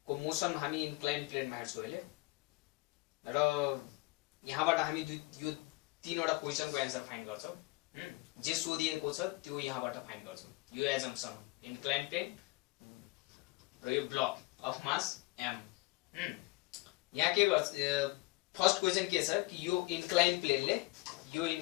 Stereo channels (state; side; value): quieter; right; 22.7 dB